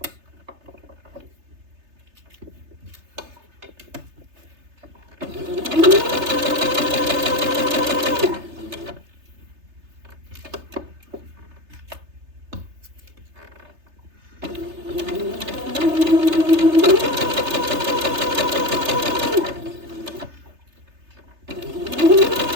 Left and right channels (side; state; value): left; late; 3.3 ms